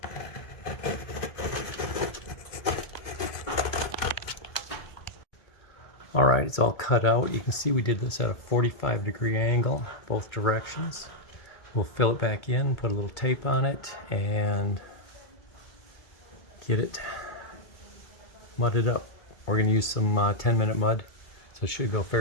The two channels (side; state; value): right; late; 2.2 ms